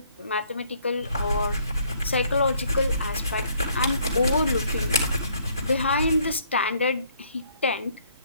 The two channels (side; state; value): both; inverted; correlation -0.64